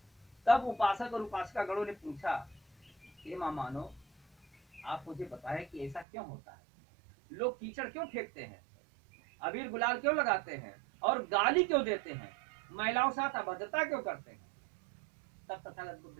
तब उपासक और उपासिका गणों ने पूछा कि मानो आप मुझे बताएं कि ऐसा क्यों होता है, लोग कीचड़ क्यों फेंकते हैं, अबीर गुलाल क्यों लगाते हैं और गाली क्यों देते हैं, महिलाओं साथ अभद्रता क्यों करते हैं। तब तथागत बुद्ध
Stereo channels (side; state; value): left; drops out; at 6.1 s